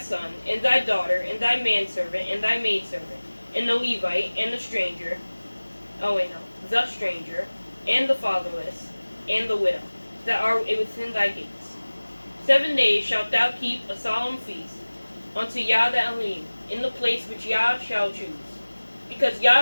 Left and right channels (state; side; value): inverted; both; correlation -1.00